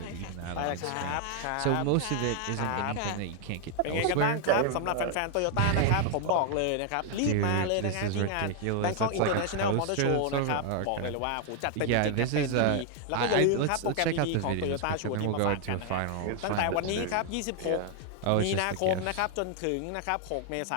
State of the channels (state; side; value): different; both; correlation 0.00